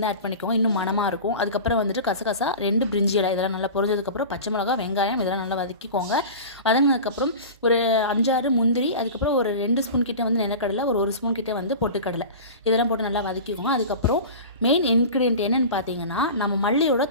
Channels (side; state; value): both; inverted; correlation -0.33